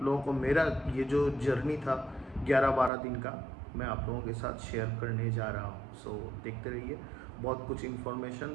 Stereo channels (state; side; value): drops out; left; at 2.9 s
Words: लोगों को मेरा ये जो जर्नी था 11-12 दिन का मैं आप लोगों के साथ शेयर करने जा रहा हूँ। देखते रहिए, बहुत कुछ